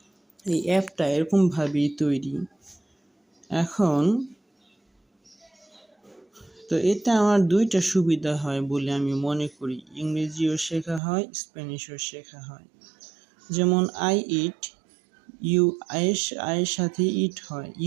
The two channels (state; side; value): drops out; left; at 11.0 s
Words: এই অ্যাপটা এরকমভাবেই তৈরি। এখন তো এতে আমার দুইটা সুবিধা হয় বলে আমি মনে করি, ইংরেজিও শেখা হয়, স্প্যানিশও শেখা হয়। যেমন আই ইট, ইউ আয়ের সাথে ইট হয়,